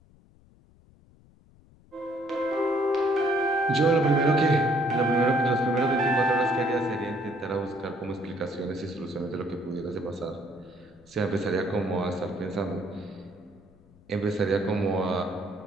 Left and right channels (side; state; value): left; noise; rumble, 28 dB below the sound